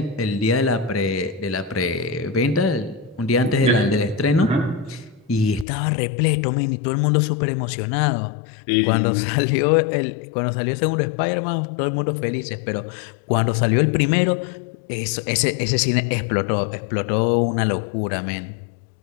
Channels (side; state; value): right; drops out; at 5.7 s